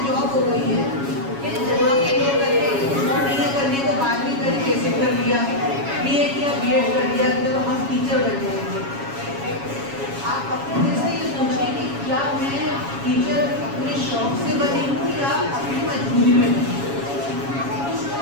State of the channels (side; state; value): left; late; 7.2 ms